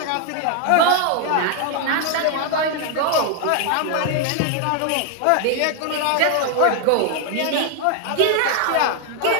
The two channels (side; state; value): both; different; correlation 0.00